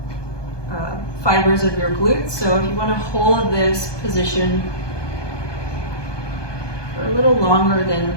fibers of your glutes. So if you want to hold this position for a little longer than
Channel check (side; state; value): right; late; 1.2 ms